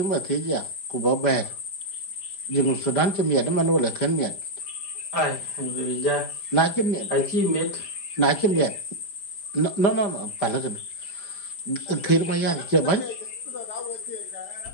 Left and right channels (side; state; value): right; late; 5.0 ms